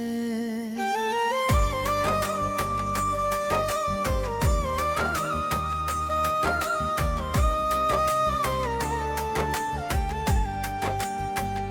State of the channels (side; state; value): both; identical; correlation 1.00